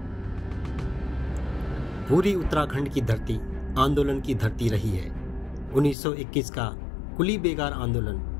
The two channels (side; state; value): right; drops out; at 6.0 s